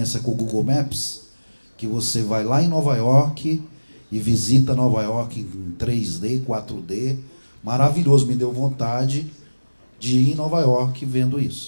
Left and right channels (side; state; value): both; inverted; correlation -1.00